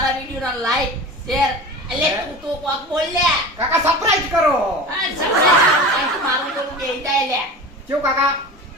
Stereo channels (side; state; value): both; normal; correlation 0.34